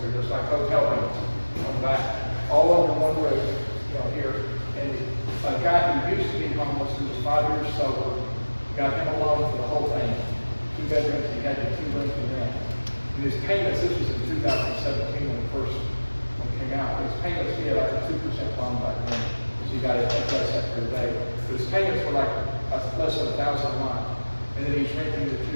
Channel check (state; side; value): inverted; both; correlation -1.00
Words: they're just like hotel rooms on the back, all under one roof, here. And a guy who used to be homeless, who was 5 years sober, got him a loan for the whole thing, 2 bedrooms, he had the 2 rooms in there. And his payments, this was in 2017 when the first one came out, his payments, he had like a 2% loan back then, so he got it less after the day. But his payments were like less than $1,000 a month, and then he's renting the